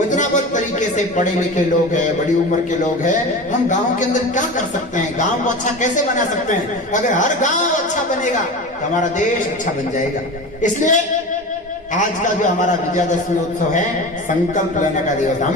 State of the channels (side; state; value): both; normal; correlation 0.30